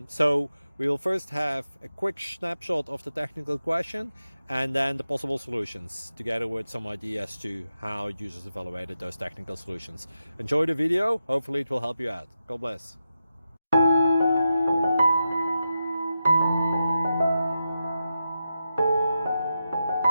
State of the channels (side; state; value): both; inverted; correlation -0.89